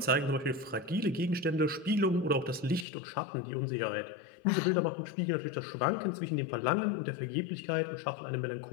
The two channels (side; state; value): right; drops out; at 2.9 s